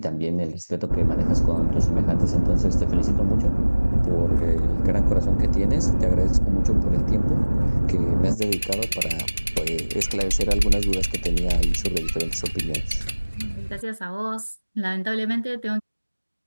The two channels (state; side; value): inverted; both; correlation -1.00